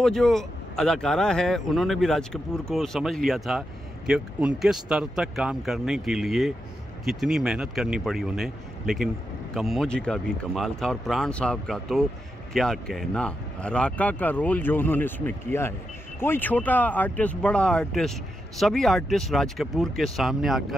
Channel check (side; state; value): both; normal; correlation 0.86